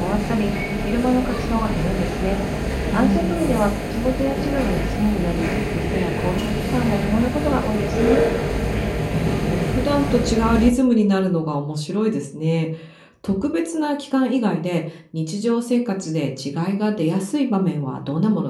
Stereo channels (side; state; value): both; identical; correlation 1.00